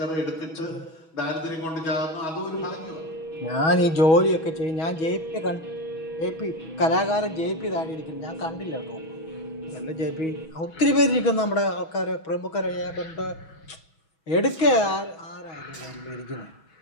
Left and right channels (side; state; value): right; late; 6.3 ms